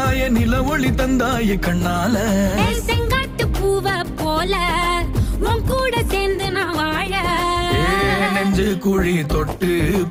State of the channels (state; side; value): identical; both; correlation 1.00